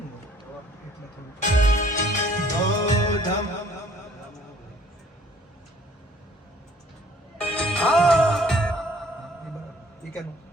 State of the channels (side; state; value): both; normal; correlation 0.57